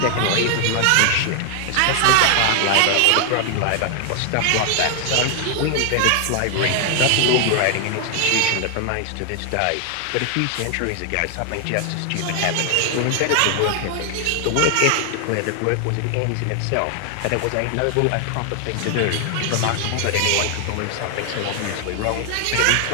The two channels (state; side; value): different; both; correlation 0.00